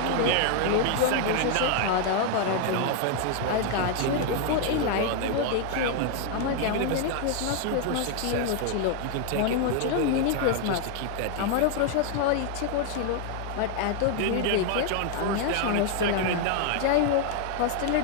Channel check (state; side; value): different; both; correlation 0.00